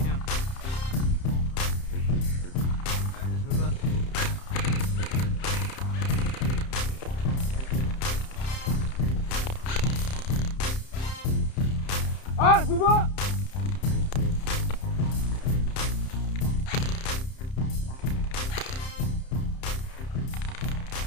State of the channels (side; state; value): right; late; 31 ms